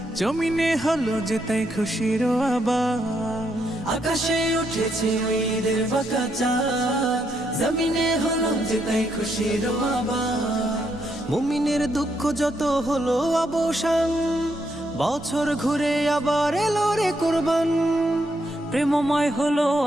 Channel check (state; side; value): normal; both; correlation 0.77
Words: জমিনে হলো যে তাই খুশির আবার। আকাশে উঠেছে ওই ঈদের বাঁকা চাঁদ, জমিনে হলো যে তাই খুশির আবার। মুমিনের দুঃখ যত হলো অবসান, বছর ঘুরে আবার এলো রে কুরবান। প্রেমময় হলো